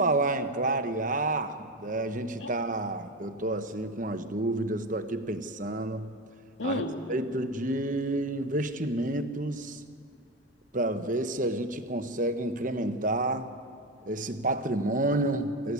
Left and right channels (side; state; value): both; normal; correlation 0.18